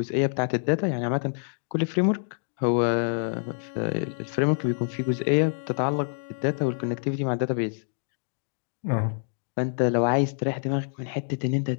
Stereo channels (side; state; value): right; silent; digital silence